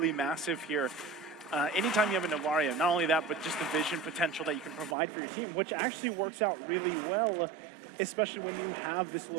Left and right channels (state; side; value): drops out; left; at 5.0 s